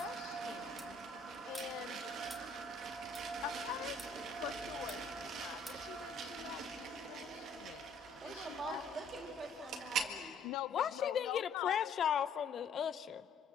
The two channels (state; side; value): quieter; right; 3.3 dB